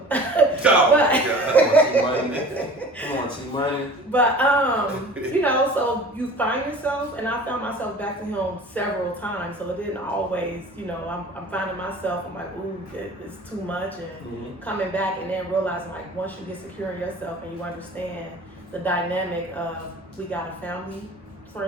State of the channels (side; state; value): both; normal; correlation 0.43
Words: Come on, T-Money. But you know, so you find yourself, and I found myself back to him several times. So it didn't always, you know, I'm finding myself. I'm like, ooh, it's too much, and coming back, and then realizing like once you get secure in yourself and you understand the dynamic of we got a family